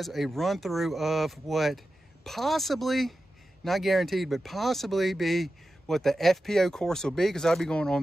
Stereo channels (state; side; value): normal; both; correlation 0.92